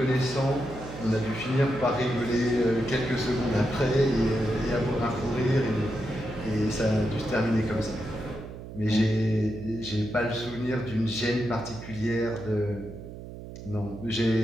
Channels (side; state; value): right; noise; hum, 12 dB below the sound